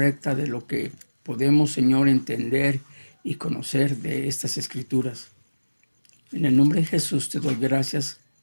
de lo que podemos, Señor, entender y conocer de estas escrituras. En el nombre de Jesús te doy gracias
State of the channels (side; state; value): both; inverted; correlation -1.00